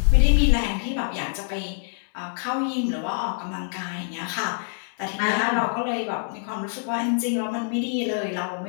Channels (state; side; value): silent; right; digital silence